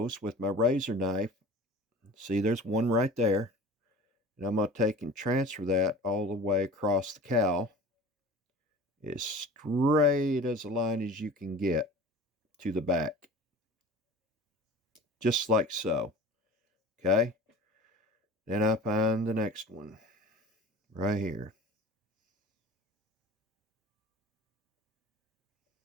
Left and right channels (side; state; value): both; normal; correlation 0.40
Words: with my razor knife. See, there's one right there. And I'm going to take and transfer that all the way across the cowl, as straight as a line as you can get to the back. Just like so. Okay? Then I find the next one right here.